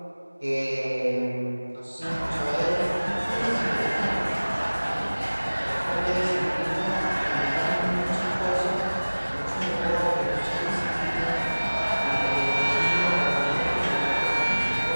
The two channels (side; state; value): both; inverted; correlation -1.00